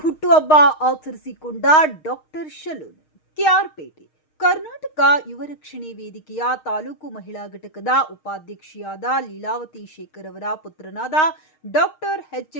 ಹುಟ್ಟುಹಬ್ಬ ಆಚರಿಸಿಕೊಂಡ ಡಾಕ್ಟರ್ ಶಲೂನ್ ಕೆಆರ್ಪೇಟೆ ಕರ್ನಾಟಕ ಯುವ ರಕ್ಷಣೆ ವೇದಿಕೆಯ ತಾಲೂಕು ಮಹಿಳಾ ಘಟಕದ ಉಪಾಧ್ಯಕ್ಷೆಯಾದ ಲೀಲಾವತಿ ಶೇಖರ್ ಅವರ ಪುತ್ರನಾದ ಡಾಕ್ಟರ್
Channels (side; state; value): right; late; 6.4 ms